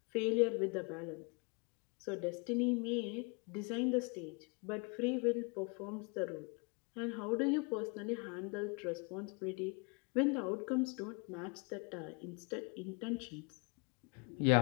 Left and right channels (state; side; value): quieter; right; 32.9 dB